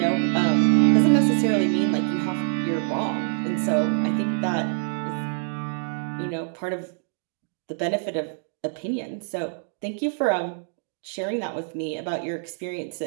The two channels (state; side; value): silent; left; digital silence